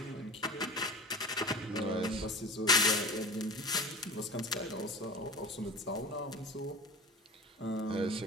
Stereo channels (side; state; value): both; normal; correlation 0.35